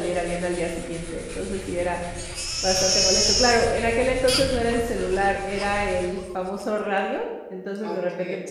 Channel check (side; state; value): both; identical; correlation 1.00